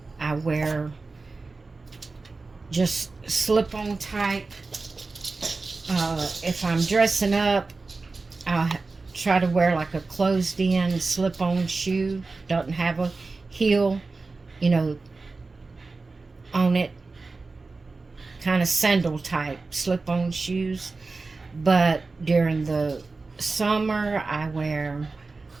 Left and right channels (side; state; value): left; quieter; 3.8 dB